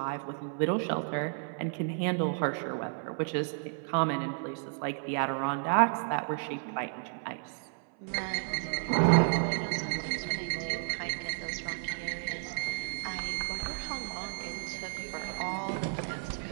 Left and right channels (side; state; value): left; silent; 56 dB below the other